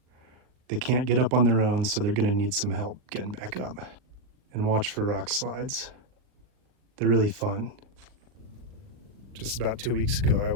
They can't get up on their own, so they're gonna need some help getting back up. And watch for rock slides. They're really fun. Just about 2 weeks ago, I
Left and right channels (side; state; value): left; late; 39 ms